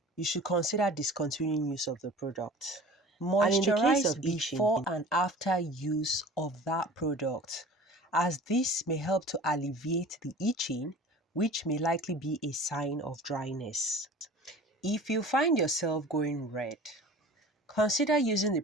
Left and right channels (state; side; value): normal; both; correlation 0.41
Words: you should consider discontinuing use of the product. And in the case of Moisturize itching, before before and after use of that product, as this may help to alleviate the itching, which may likely be a sign of dryness. If you find yourself going red, consider using the